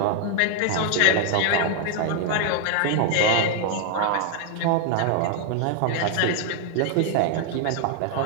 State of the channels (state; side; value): different; both; correlation 0.00